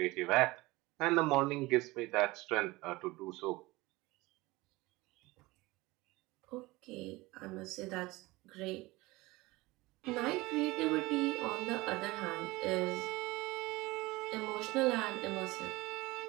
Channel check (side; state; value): left; quieter; 21.1 dB